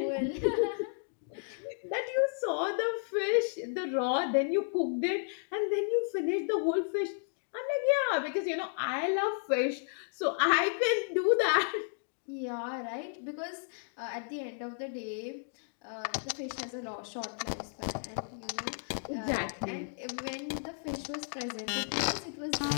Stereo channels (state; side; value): silent; right; digital silence